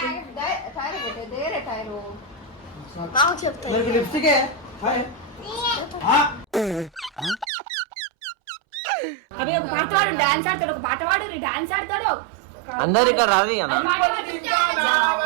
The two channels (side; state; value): left; drops out; at 7.5 s